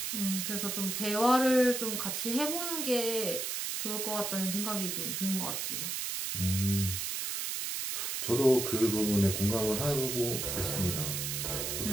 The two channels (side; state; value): right; noise; hiss, 2 dB below the sound